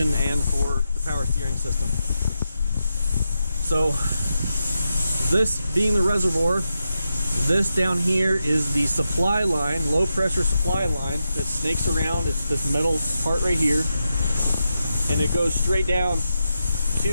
and for the power steering system. So this being the reservoir, this down here is the supply line, low pressure supply line that snakes around. It's this metal part right here, and it goes straight down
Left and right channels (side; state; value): both; inverted; correlation -0.87